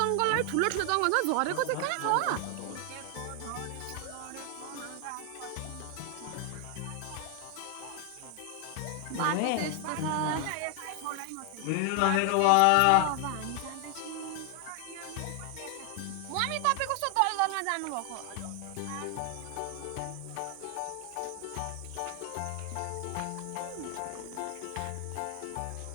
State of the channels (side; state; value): both; different; correlation 0.00